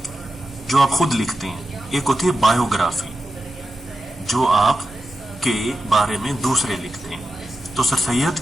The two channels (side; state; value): both; normal; correlation 0.91